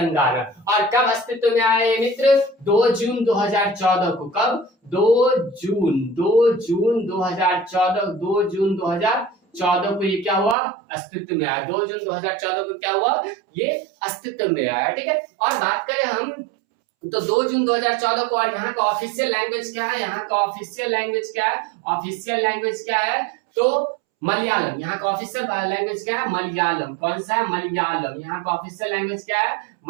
और कब अस्तित्व में आए मित्र? 2 जून 2014 को। कब? 2 जून 2014। 2 जून 2014 को ये क्या हुआ? अस्तित्व में आया। 2 जून 2014 को क्या हुआ? ये अस्तित्व में आया। ठीक है, और बात करें हम तो 2 जून 2014 को। और यहाँ का ऑफिशियल लैंग्वेज क्या है? यहाँ का ऑफिशियल लैंग्वेज क्या है? ऑफिशियल लैंग्वेज क्या है? तो मलयालम। यहाँ का ऑफिशियल लैंग्वेज क्या है? मलयालम। कौन सा है? मलयालम। यहाँ का ऑफिशियल लैंग्वेज क्या है?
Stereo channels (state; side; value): drops out; left; at 10.6 s